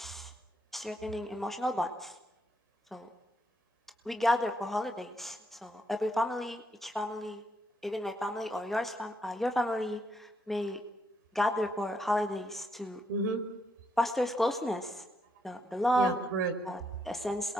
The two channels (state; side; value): normal; both; correlation 0.77